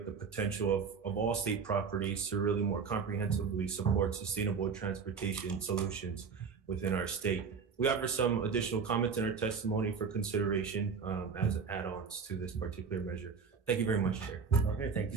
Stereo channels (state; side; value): quieter; left; 5.8 dB